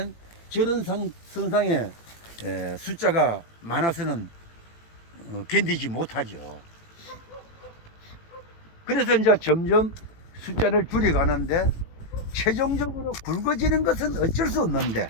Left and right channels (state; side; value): late; right; 18 ms